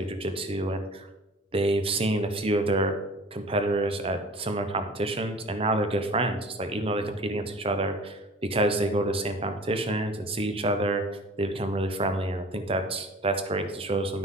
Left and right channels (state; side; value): normal; both; correlation 0.43